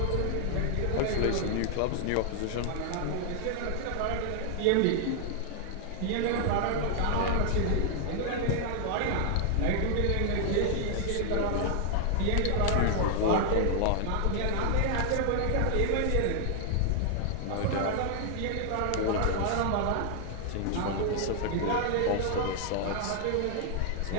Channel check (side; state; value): both; different; correlation 0.00